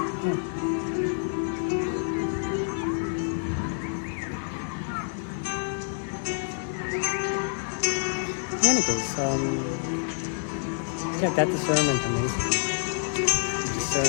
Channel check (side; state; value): right; silent; 60 dB below the other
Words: In any case, that discernment amazes me.